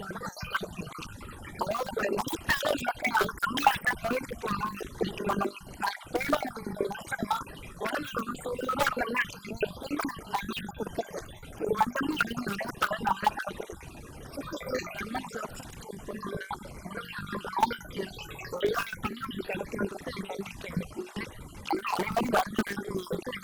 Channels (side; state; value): both; identical; correlation 1.00